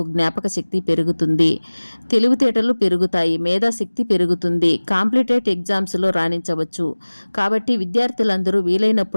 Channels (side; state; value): both; inverted; correlation -1.00